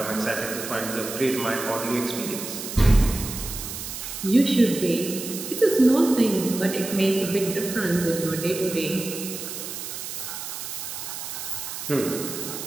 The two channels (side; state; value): right; noise; hiss, 8 dB below the sound